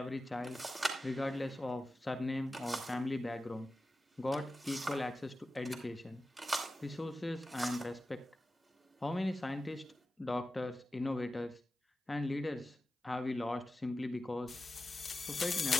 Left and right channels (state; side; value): normal; both; correlation 0.93